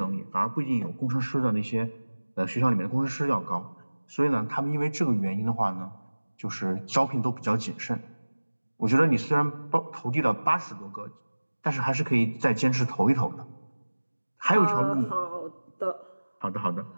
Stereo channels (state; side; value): inverted; both; correlation -1.00